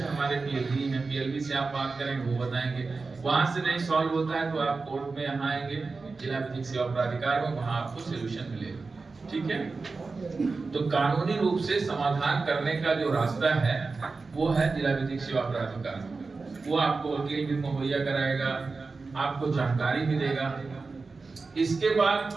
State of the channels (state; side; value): quieter; left; 4.1 dB